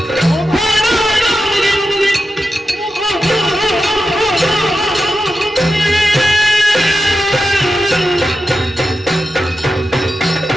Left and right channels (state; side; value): normal; both; correlation 0.90